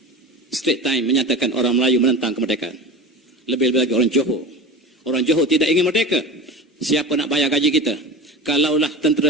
Straight Time menyatakan orang Melayu menentang kemerdekaan. Lebih-lebih lagi orang Johor. Orang Johor tidak ingin merdeka. Siapa nak bayar gaji kita? Kalaulah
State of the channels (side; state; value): both; normal; correlation 0.31